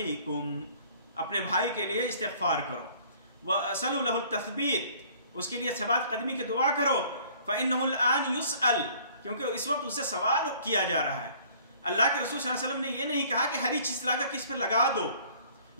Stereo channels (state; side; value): inverted; both; correlation -0.54